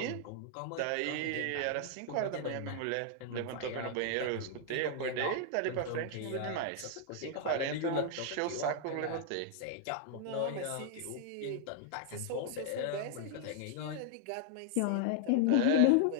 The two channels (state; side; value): different; both; correlation 0.00